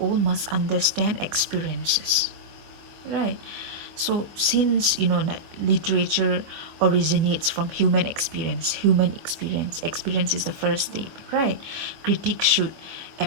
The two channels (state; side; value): late; left; 25 ms